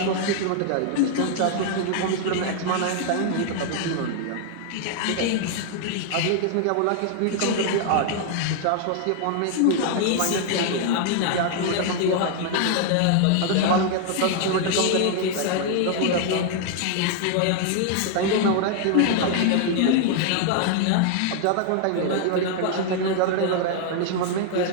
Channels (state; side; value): different; both; correlation 0.00